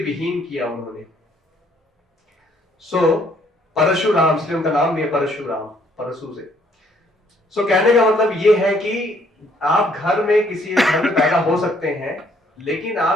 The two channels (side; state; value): both; normal; correlation 0.66